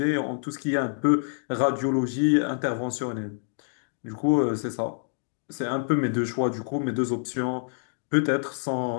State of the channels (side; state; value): right; silent; digital silence